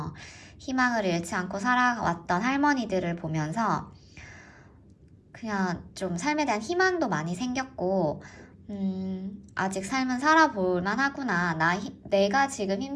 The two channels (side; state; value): both; identical; correlation 1.00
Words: 희망을 잃지 않고 살아왔던 할머니들을 보면서 그냥 좀 삶에 대한 희망도 많이 생겼고, 아직 삶은 살아볼 만하구나. 내가 지금